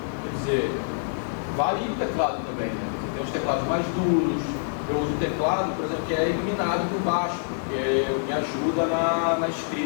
quer dizer, varia o teclado também, né? Tem os teclados mais duros. Eu uso o teclado, por exemplo, que é iluminado por baixo, porque me ajuda na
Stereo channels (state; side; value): silent; right; digital silence